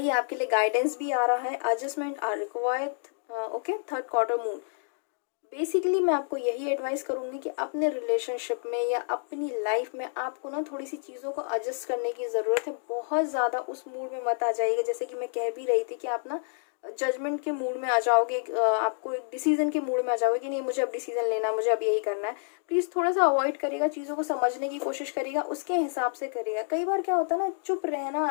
आपके लिए गाइडेंस भी आ रहा है। Adjustment are required. Okay, third quarter moon. Basically मैं आपको यही एडवाइस करूँगी कि अपने रिलेशनशिप में या अपनी लाइफ में आपको ना थोड़ी सी चीज़ों को एडजस्ट करने की ज़रूरत है। बहुत ज़्यादा उस मूड में मत आ जाइएगा, जैसे कि मैं कह भी रही थी कि आप ना जजमेंट के मूड में आ जाओगे, आपको एक डिसीजन के मूड में आ जाओगे कि नहीं मुझे अब डिसीजन लेना है, मुझे अब यही करना है। प्लीज़ थोड़ा सा अवॉइड करिएगा, चीज़ों को समझने की कोशिश करिएगा, उसके हिसाब से करिएगा। कई बार क्या होता है ना, चुप रहना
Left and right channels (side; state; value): right; silent; digital silence